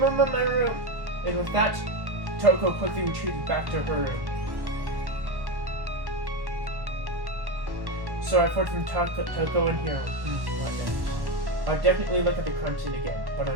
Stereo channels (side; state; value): left; late; 1.1 ms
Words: room. And with that, Toko quickly retreated back to her room. So I fought from Toko and Hiro. I'll definitely look at the crime scene again, but